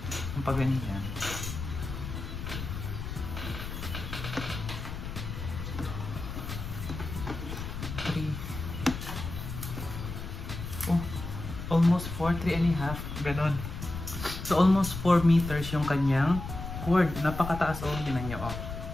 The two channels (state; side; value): noise; left; rumble, 7 dB below the sound